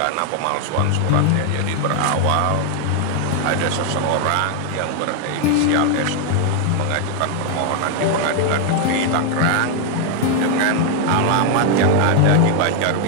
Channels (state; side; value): different; both; correlation 0.01